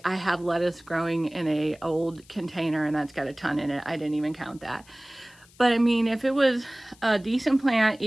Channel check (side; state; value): left; noise; hiss, 27 dB below the sound